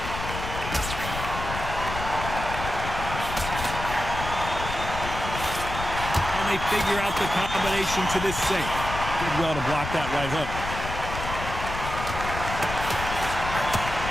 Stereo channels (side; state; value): left; noise; rumble, 7 dB below the sound